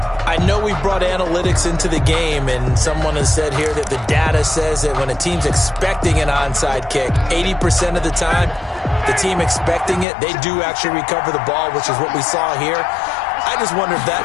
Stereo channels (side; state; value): right; drops out; at 10.1 s